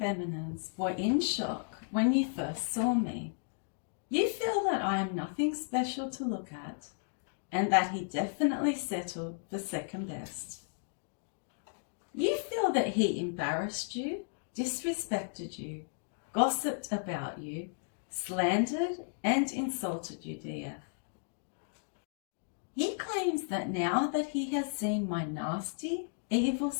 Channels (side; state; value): right; silent; digital silence